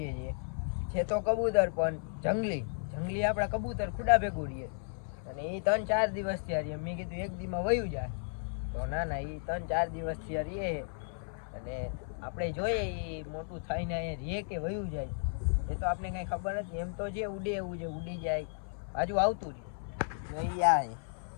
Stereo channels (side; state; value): right; silent; 55 dB below the other